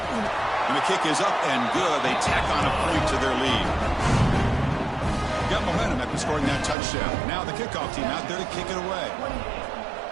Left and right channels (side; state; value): left; drops out; at 6.8 s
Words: And the kick is up and good. They tack on a point to their lead. Got momentum after scoring that touchdown. Now the kickoff team out there to kick it away.